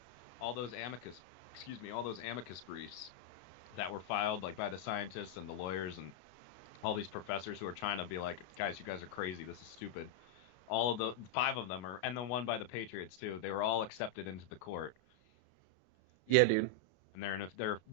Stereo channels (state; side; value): late; right; 33 ms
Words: all those amicus briefs that were filed like by the scientists and the lawyers and all these professors who are trying to be like, guys, you guys are crazy. This is stupid. All of the 5 of them and the one by the Patriots too. They were all accepted into the court. Yeah, dude. and